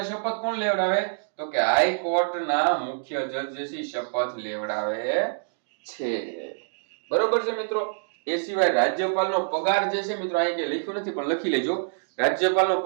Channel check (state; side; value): silent; left; digital silence